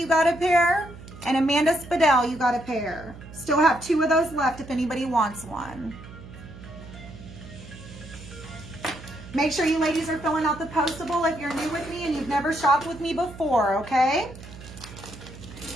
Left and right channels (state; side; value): noise; right; hum, 16 dB below the sound